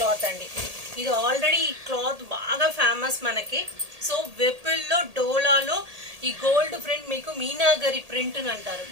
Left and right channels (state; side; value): late; left; 1.8 ms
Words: అండి. ఇది ఆల్రెడీ ఈ క్లాత్ బాగా ఫేమస్ మనకి. సో విపుల్లో డోలాలో ఈ గోల్డ్ ప్రింట్ మీకు మీనాగరి ప్రింట్ అంటారు.